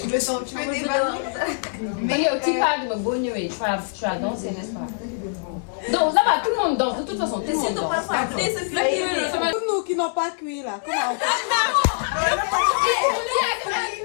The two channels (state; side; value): silent; right; digital silence